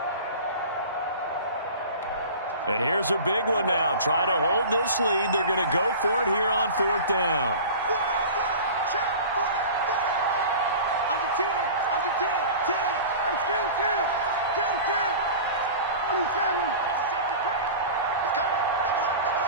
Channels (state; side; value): inverted; both; correlation -0.37